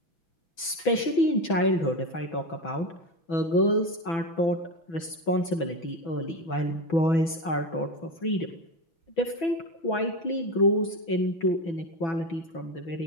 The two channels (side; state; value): right; late; 6.0 ms